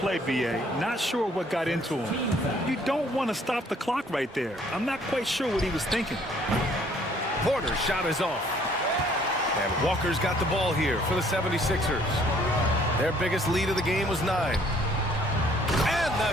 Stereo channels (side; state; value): both; normal; correlation 0.61